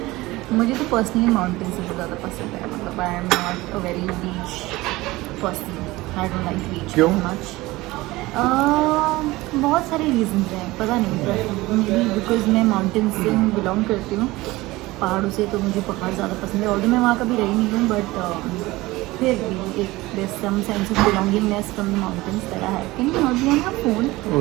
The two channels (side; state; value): left; quieter; 19.8 dB